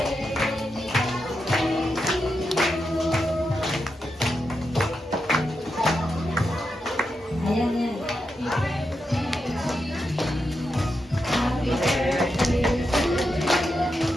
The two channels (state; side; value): normal; both; correlation 0.86